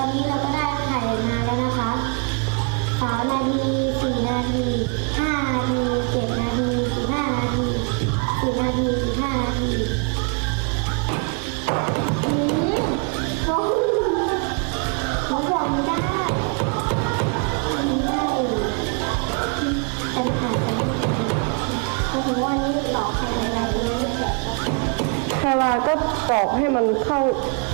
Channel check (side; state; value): left; quieter; 36.9 dB